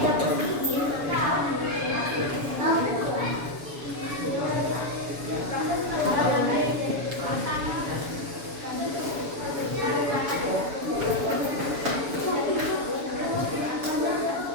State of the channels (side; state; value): left; late; 7.0 ms